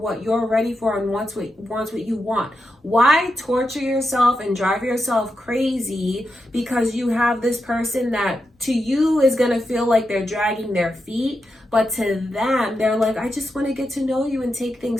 you're ready for and wants what you want. Why torture yourself and drive yourself crazy because you have this person that to you is going to feel like they're dragging their feet, but to them, they're like, I just want to get to know you and take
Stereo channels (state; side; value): normal; both; correlation 0.87